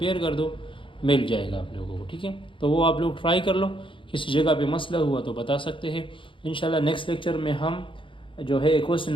कर दो, मिल जाएगा आप लोगों को, ठीक है। तो वो आप लोग ट्राई कर लो, किसी जगह पे मसला हुआ तो बता सकते हैं। इंशाल्लाह नेक्स्ट लेक्चर में हम जो है क्वेश्चन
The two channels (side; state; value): right; late; 0.25 ms